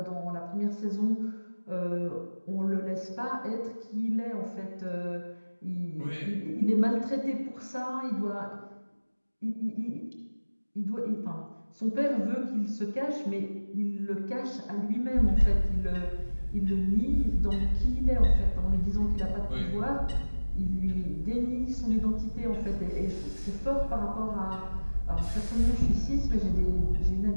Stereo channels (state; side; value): inverted; both; correlation -1.00